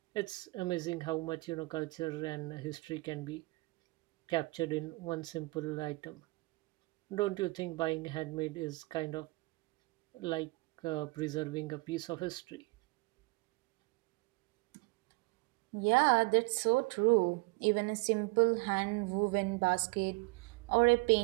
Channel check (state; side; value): quieter; left; 24.5 dB